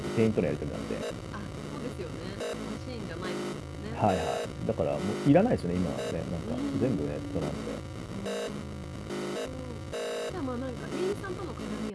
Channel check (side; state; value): both; identical; correlation 1.00